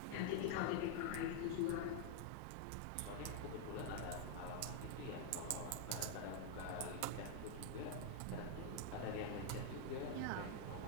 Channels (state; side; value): different; both; correlation 0.00